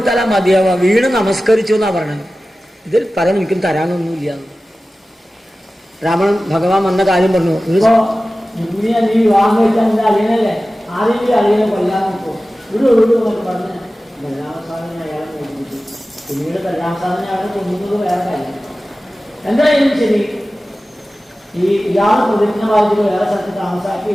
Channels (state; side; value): normal; both; correlation 0.96